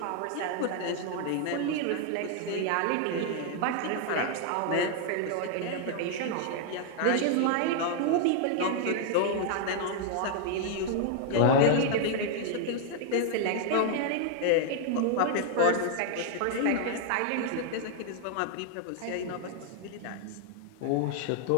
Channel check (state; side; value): different; both; correlation 0.00